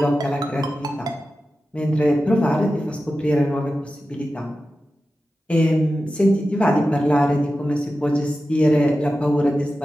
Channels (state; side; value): normal; both; correlation 0.93